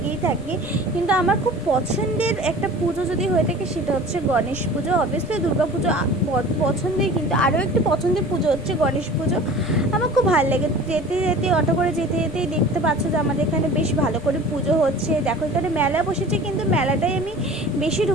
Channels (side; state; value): left; noise; rumble, 17 dB below the sound